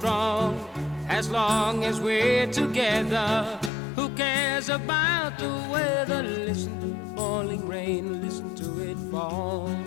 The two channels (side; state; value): right; drops out; at 3.7 s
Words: As long as we're together, who cares about the weather? Listen to the falling rain, listen to it fall.